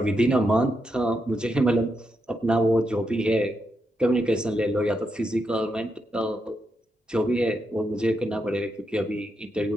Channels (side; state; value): both; normal; correlation 0.83